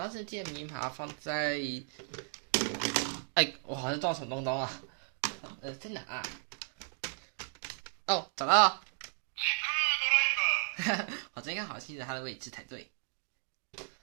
时记得明把它放在，我好像撞什么东东啊？在哪啊？哦，找到了。我这应该好记得它的位置才对。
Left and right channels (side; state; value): left; silent; 55 dB below the other